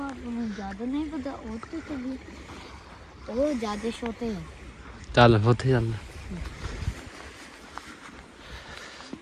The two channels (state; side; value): identical; both; correlation 1.00